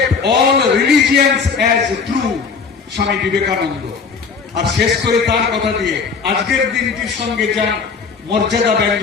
all religions as true, Swami Vivekananda. আর শেষ করে তার কথা দিয়ে আজকের দিনটির সঙ্গে যা মর্যাদা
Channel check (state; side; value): quieter; right; 5.3 dB